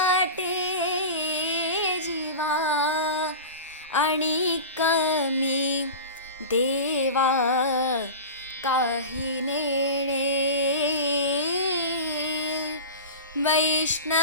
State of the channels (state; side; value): inverted; both; correlation -0.31